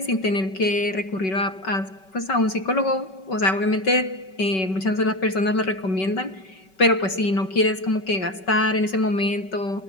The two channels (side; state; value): right; late; 5.3 ms